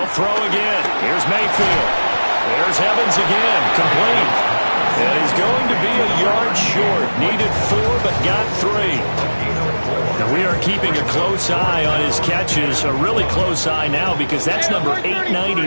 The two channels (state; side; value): inverted; both; correlation -1.00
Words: throw again. Here's Mayfield. There's Evans again. Complete. And he's going to be a yard short. Needed 4, but got 3. Now we are keeping a close eye on his catches, a really close eye now because that's number